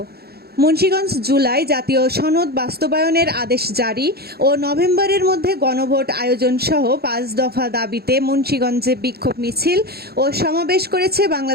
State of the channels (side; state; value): left; late; 0.46 ms